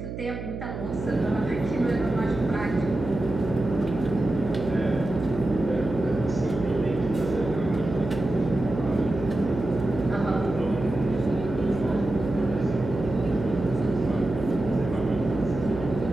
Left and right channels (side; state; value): right; noise; hum, 8 dB below the sound